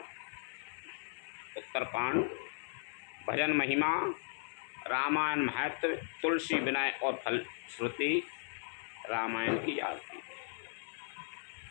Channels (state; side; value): silent; right; 53 dB below the other